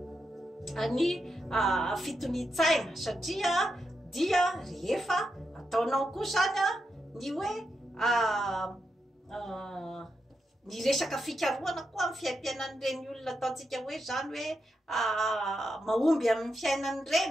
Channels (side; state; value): both; normal; correlation 0.85